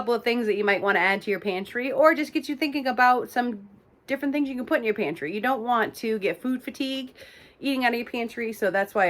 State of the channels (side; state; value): both; identical; correlation 1.00